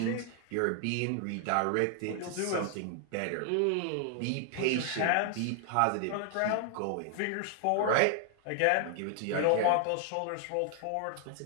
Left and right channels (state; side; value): different; both; correlation 0.00